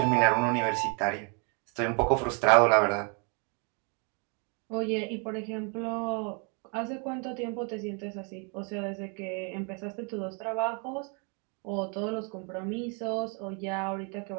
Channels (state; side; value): quieter; left; 36.3 dB